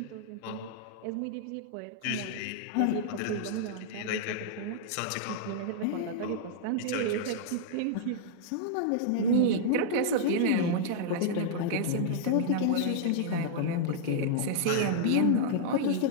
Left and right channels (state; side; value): different; both; correlation -0.01